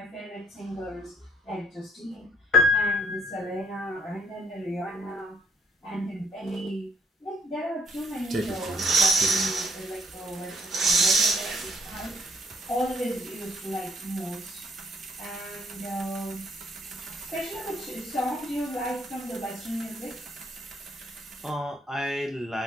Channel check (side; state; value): both; normal; correlation 0.64